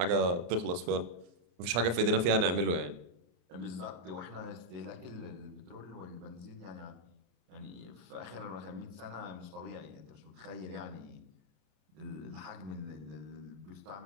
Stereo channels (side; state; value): left; late; 34 ms